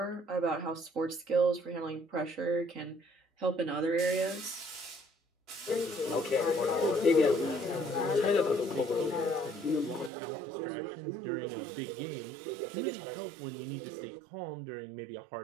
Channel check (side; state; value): left; drops out; at 10.1 s